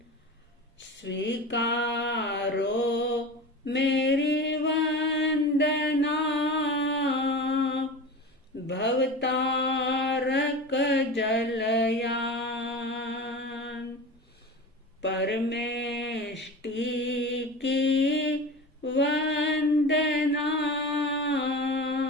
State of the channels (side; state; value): both; normal; correlation 0.31